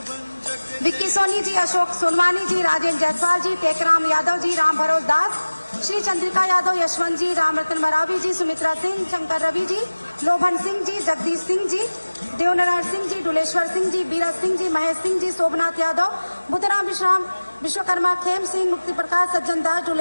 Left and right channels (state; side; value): inverted; both; correlation -1.00